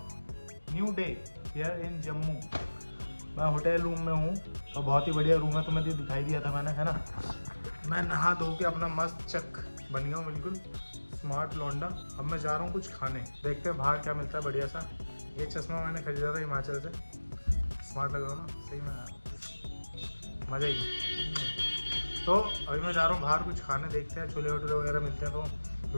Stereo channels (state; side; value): inverted; both; correlation -1.00